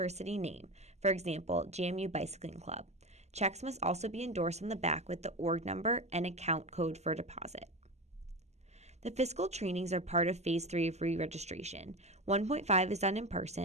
name, for example, JMU Bicycling Club. Checks must also be endorsed on the back with the org number and account code for deposit. The fiscal trainings are part of Phase 3 of re-registration. 1.5 is done in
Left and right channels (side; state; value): left; late; 0.32 ms